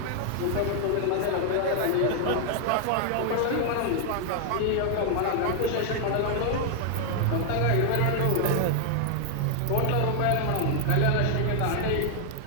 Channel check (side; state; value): both; different; correlation 0.00